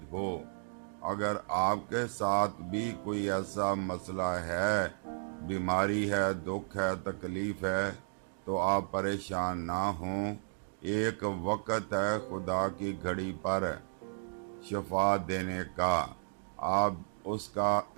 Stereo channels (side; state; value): left; silent; digital silence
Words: ہو۔ اگر آپ کے ساتھ بھی کوئی ایسا مسئلہ ہے، بیماری ہے، دکھ ہے، تکلیف ہے، تو آپ پریشان نہ ہوں۔ ایک وقت ہے خدا کی گھڑی پر شفا دینے کا، آپ اس کا